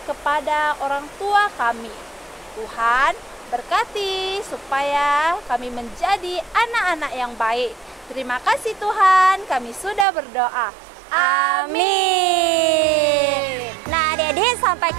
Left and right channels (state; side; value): drops out; left; at 10.1 s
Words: kepada orang tua kami. Tuhan, berkati supaya kami menjadi anak-anak yang baik. Terima kasih Tuhan, kami sudah berdoa. Amin. Nah, adik-adik, sampai